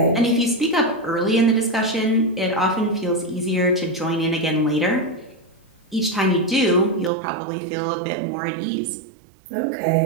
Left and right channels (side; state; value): left; drops out; at 7.1 s